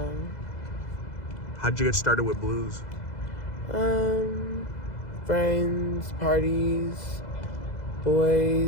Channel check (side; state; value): right; late; 2.0 ms